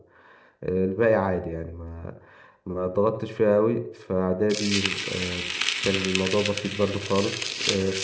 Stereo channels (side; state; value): both; identical; correlation 1.00